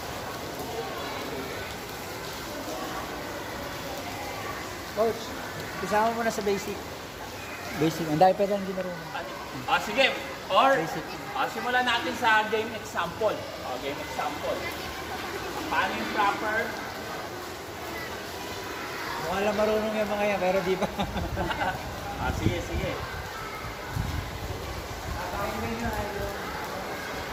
Coach, isama mo na sa basic. Basic. Ang dahil pa lang din marunong. Sige. Or, Basic. simulan natin sa game example. Game example. Paano yung proper? Mukha lang marunong yung mga yan, pero di pa. Sige, sige.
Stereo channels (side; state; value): both; identical; correlation 1.00